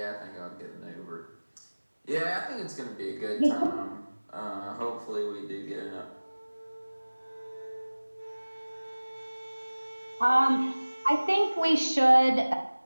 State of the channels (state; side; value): inverted; both; correlation -1.00